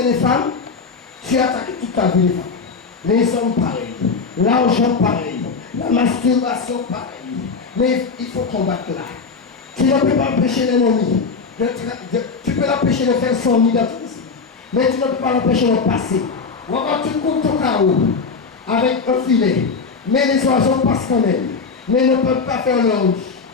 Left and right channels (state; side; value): quieter; right; 4.9 dB